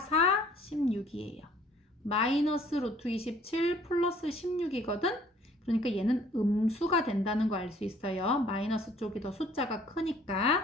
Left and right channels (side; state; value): both; normal; correlation 0.58